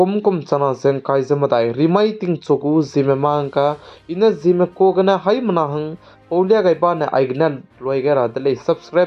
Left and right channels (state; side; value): identical; both; correlation 1.00